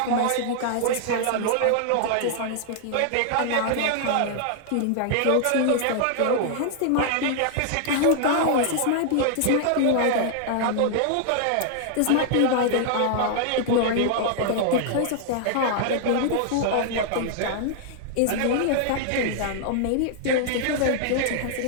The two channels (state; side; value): different; both; correlation -0.01